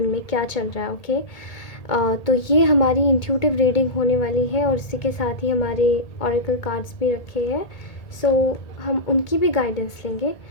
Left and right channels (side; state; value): right; late; 1.8 ms